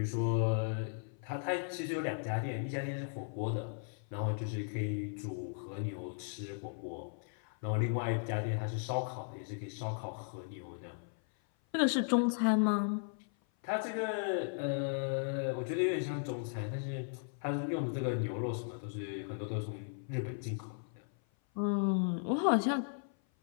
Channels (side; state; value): right; silent; 53 dB below the other